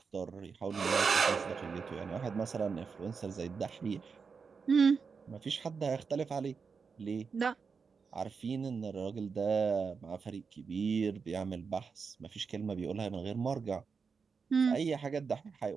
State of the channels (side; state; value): left; quieter; 5.4 dB